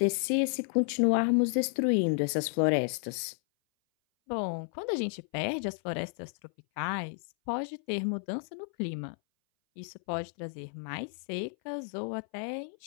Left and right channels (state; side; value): silent; right; 57 dB below the other